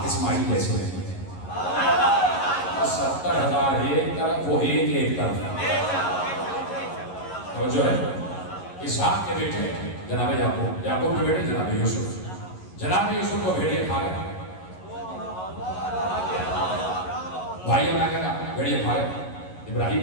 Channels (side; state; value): right; late; 11 ms